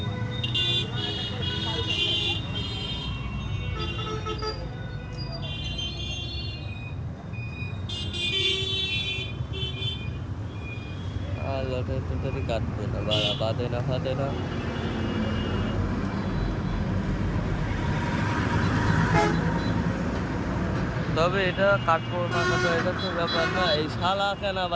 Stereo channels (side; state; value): both; identical; correlation 1.00